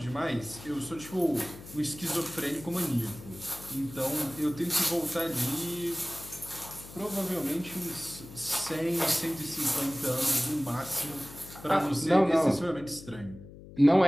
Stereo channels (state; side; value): noise; left; hum, 16 dB below the sound